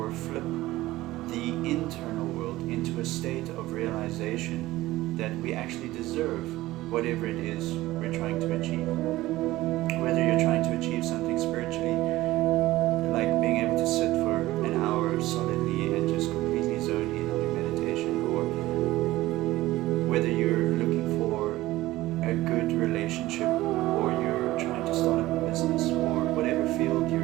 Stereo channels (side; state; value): left; quieter; 17.3 dB